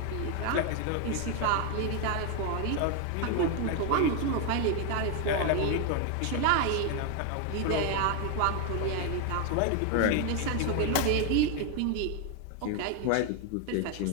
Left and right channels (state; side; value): different; both; correlation 0.01